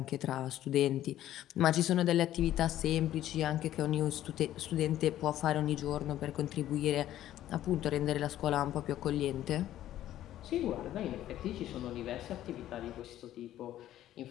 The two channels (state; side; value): quieter; right; 12.9 dB